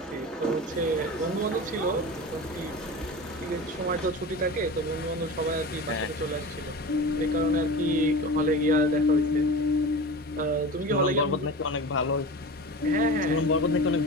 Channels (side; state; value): both; normal; correlation 0.32